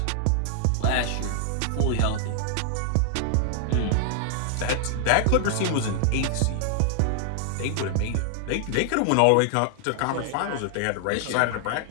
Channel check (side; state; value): both; different; correlation 0.00